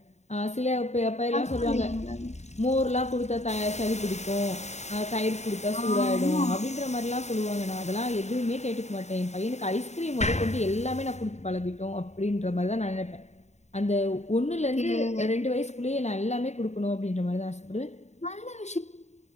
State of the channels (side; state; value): right; late; 0.33 ms